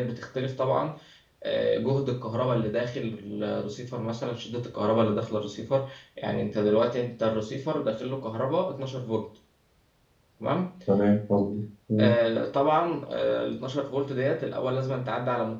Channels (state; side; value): identical; both; correlation 1.00